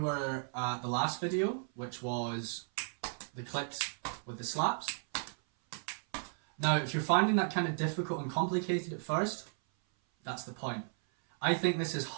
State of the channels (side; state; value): left; silent; 55 dB below the other